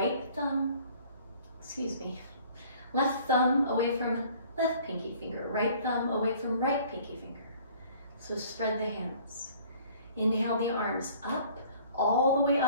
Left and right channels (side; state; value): both; inverted; correlation -0.53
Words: thumb, left thumb away from left pinky finger, right thumb away from right pinky finger. So spread the hands. Inhale the arms up, all the way